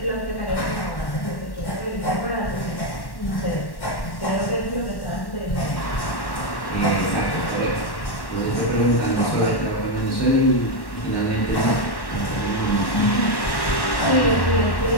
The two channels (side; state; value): right; late; 1.1 ms